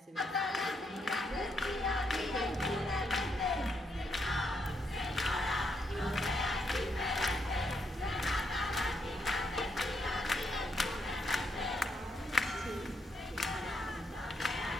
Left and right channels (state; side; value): normal; both; correlation 0.77